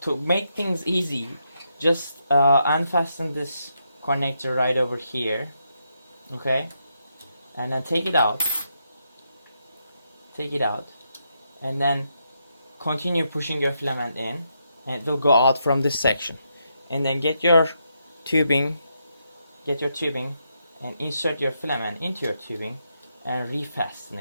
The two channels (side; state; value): both; inverted; correlation -0.81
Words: make things easy, just unfasten this connector right over here, okay, and then take it out, and then continue pushing your filament in, and it will go out from this section. And then get your tubing and insert your filament into your tubing and refasten